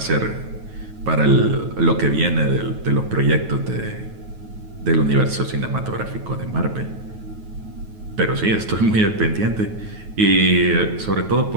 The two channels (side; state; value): left; late; 9.3 ms